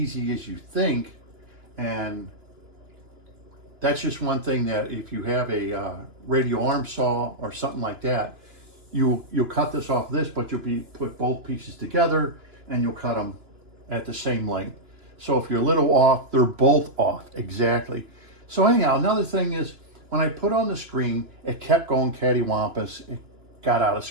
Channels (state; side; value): late; left; 2.9 ms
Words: as you think. And that's just one thing that if you have a radial arm saw or something like that, you'll cut this off this, but you'll put both pieces together and you'll cut them at the same length. So if you're a little off, they're both off exactly. So anyhow, another thing is, when I put on the screen, it kept going cattywampus. It got out of